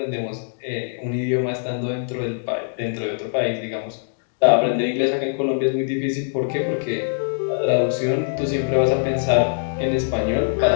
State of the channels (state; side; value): silent; right; digital silence